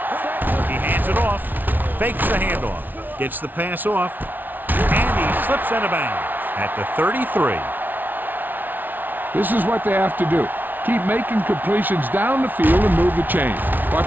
He hands it off, fakes the handoff, gets the pass off, and he slips out of bounds at the 33. This is what they have to do. Keep making completions down the field and move the chain.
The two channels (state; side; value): late; left; 0.086 ms